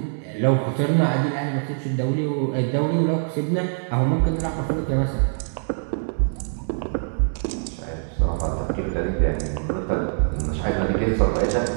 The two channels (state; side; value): silent; left; digital silence